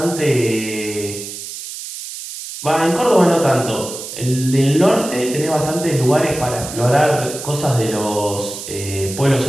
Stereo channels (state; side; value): noise; right; hiss, 10 dB below the sound